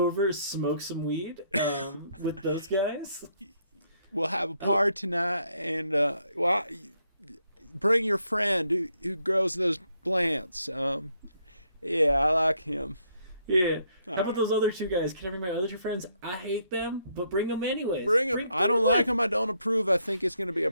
over, smoke some weed with those guys. We'll have a party tonight, and bring your friend who grows those plants. Yeah, I like him. Yeah. How about those other two guys? Can I bring my other two friends? I hate them, but bring them anyways. Bring them. I don't like them. I don't approve. I think it's going to be a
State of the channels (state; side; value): inverted; both; correlation -0.73